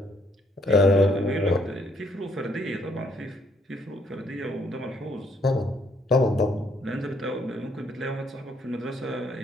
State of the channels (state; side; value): normal; both; correlation 0.69